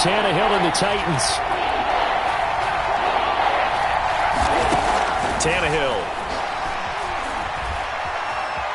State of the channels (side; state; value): both; identical; correlation 1.00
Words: Tannehill and the Titans. Tannehill.